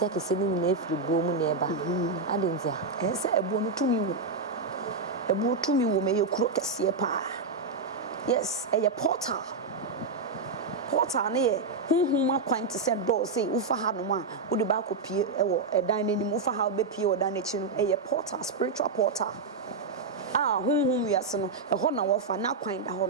ni na efibu mu na eba adentia se ebu no tumi wo me ye kuro kese pa yes ye portal ne ye hunhum akwante se do say ufa ha no ma wo de ba kopie e wo edan nanim ufa ha be pie wo dan na chi no ye portal spiritual portal hunhum wiase no e ho na wo fa na kwan da ho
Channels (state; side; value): quieter; left; 4.0 dB